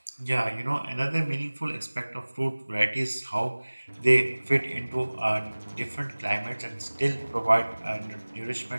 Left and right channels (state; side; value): inverted; both; correlation -1.00